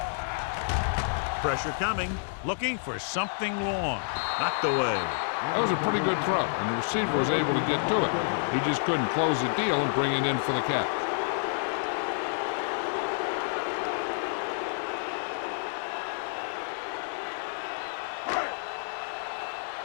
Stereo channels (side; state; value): right; silent; 58 dB below the other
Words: Pressure coming. Looking for something long. Knocked away. That was a pretty good throw, and the receiver was able to get to it. He just couldn't close the deal and bring it in for the catch.